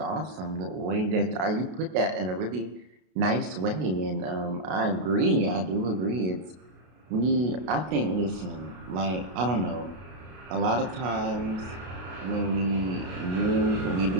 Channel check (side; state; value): left; late; 32 ms